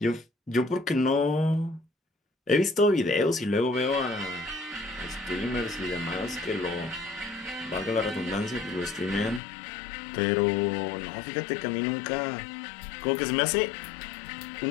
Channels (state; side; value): drops out; right; at 9.4 s